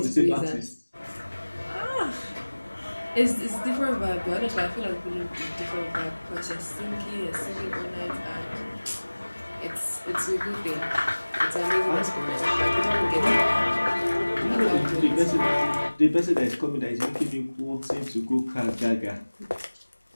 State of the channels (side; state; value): both; inverted; correlation -1.00